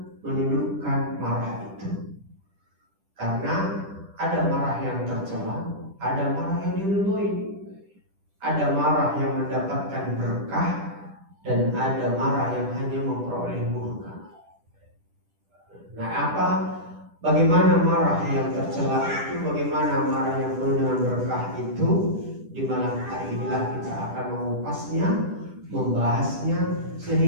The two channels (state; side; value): late; left; 10 ms